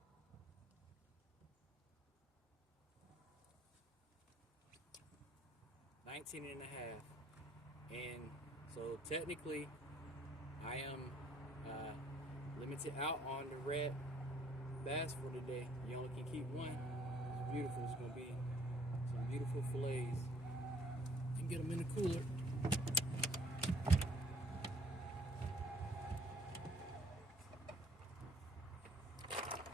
And so technically I am limited out on the red bass for today. You only can keep one. beautiful. It's gonna be some beautiful fillets. And get them in the cooler.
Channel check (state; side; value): normal; both; correlation 0.61